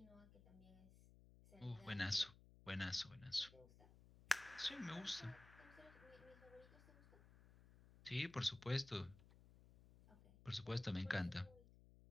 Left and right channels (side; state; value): left; noise; hum, 21 dB below the sound